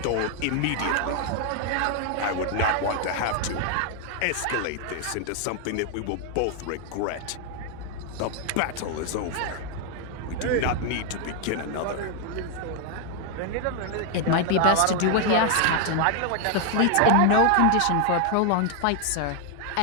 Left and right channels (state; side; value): different; both; correlation 0.00